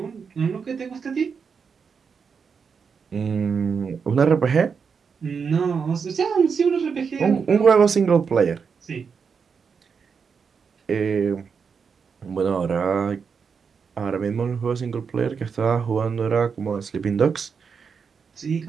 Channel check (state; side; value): quieter; left; 6.0 dB